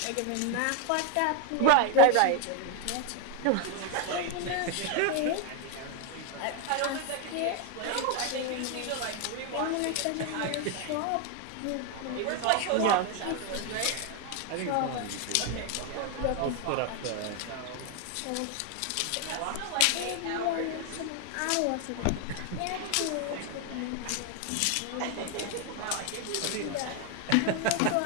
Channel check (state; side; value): different; both; correlation 0.01